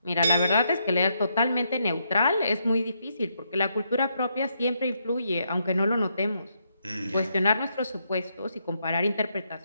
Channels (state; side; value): inverted; both; correlation -0.78